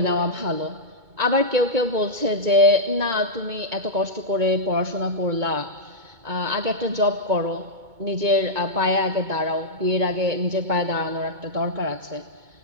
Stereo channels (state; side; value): late; left; 2.2 ms